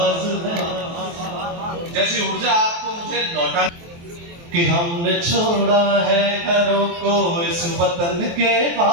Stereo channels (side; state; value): left; late; 23 ms